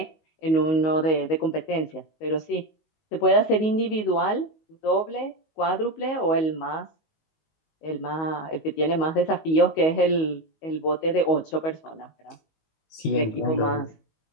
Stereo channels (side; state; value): right; late; 19 ms